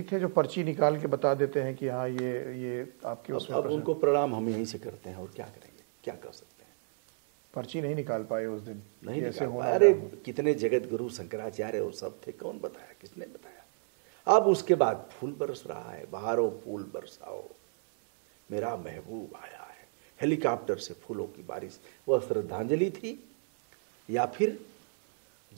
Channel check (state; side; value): silent; left; 57 dB below the other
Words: थे जो पर्ची निकाल के बता देते हैं कि हाँ ये आपके अब उनको प्रणाम हम यहीं से करते हैं और क्या करेंगे, क्या कर सकते हैं। पर्ची नहीं निकाल पाए उस दिन, नहीं निकाल पाए। अरे कितने जगत गुरु शंकराचार्य और सब थे, कौन बताया, किसने बताया। अब उसके बाद फूल बरस रहा है, बहारो फूल बरसाओ, मेरा महबूब आया है। हेलीकॉप्टर से फूलों की बारिश, वह श्रद्धांजलि थी या फिर